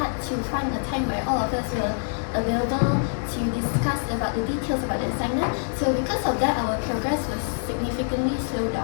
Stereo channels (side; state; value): right; silent; 62 dB below the other